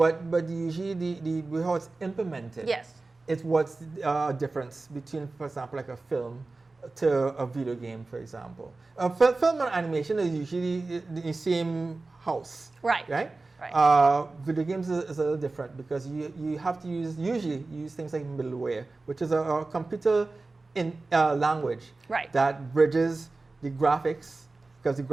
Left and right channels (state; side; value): quieter; left; 3.4 dB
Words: usually the how it's implemented. It's what's the difference between, for example, like a film to a video game, for example. Film and animation is usually the same house. Right. Video games is a little different because you have to usually use things like middleware, which is a computer in language that bridges the graphics, because the